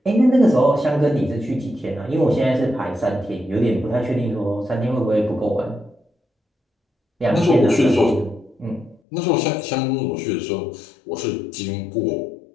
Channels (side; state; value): right; drops out; at 9.0 s